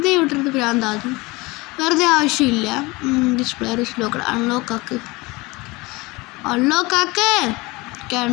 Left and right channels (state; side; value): quieter; right; 23.4 dB